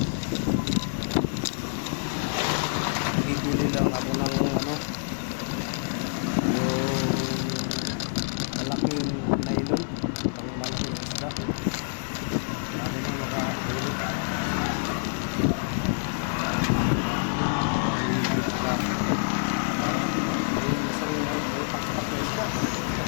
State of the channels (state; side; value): silent; right; digital silence